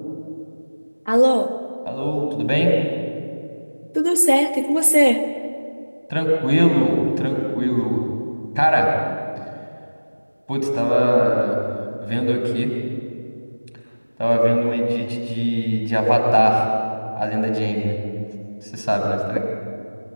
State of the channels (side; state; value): both; inverted; correlation -1.00